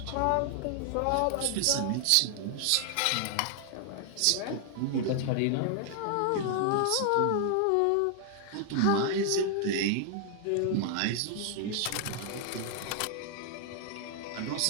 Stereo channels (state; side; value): different; both; correlation 0.00